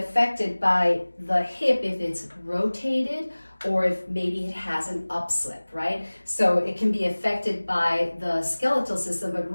by the hip if it's rotated or if maybe it has an upslip, right? So it can be affected by the skeletal system, but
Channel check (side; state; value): both; inverted; correlation -1.00